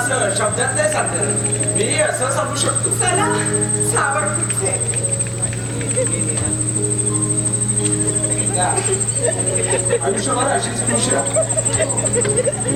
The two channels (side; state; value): both; identical; correlation 1.00